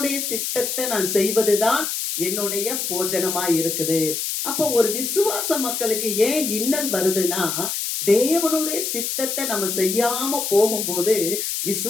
சித்தத்தை நான் செய்வதுதான் என்னுடைய போஜனமாய் இருக்குது. அப்போ ஒரு விசுவாச மக்களுக்கு ஏன் இன்னல் வருதுன்னா, தேவனுடைய சித்தத்தை நம்ம செய்யாம போகும்போது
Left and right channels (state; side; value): noise; left; hiss, 2 dB below the sound